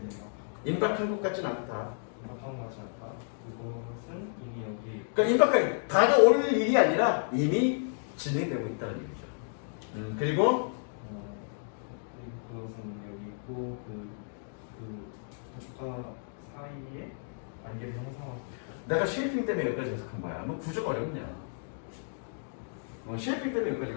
돼. 임박한 것 같진 않다. 임박한 거 같지 않다. 그것은 이미 여기. 그러니까 임박한 다가올 일이 아니라 이미 진행되고 있다는 얘기죠. 그리고 그것은 여기 있고 그 국가 사이에 관계를 형성하고. 내가 쉐이핑 때문에 여기까지 해석한 거야. 뭐 구조가 어렵냐? 쉐이핑 때문에 여기까지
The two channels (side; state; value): right; silent; digital silence